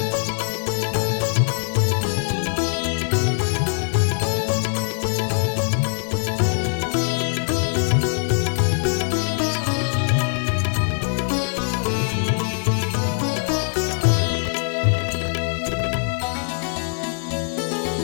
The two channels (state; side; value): silent; right; 61 dB below the other